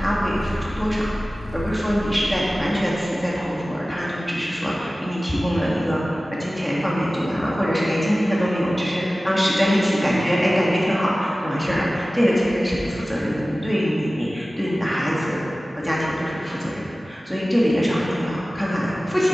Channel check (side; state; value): both; normal; correlation 0.97